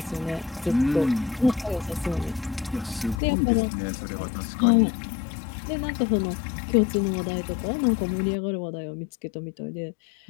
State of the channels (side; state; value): right; drops out; at 3.2 s